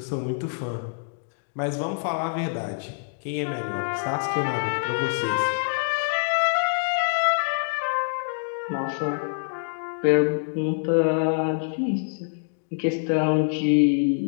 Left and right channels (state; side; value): silent; right; digital silence